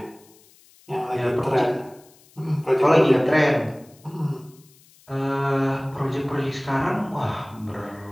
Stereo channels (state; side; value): noise; left; hiss, 28 dB below the sound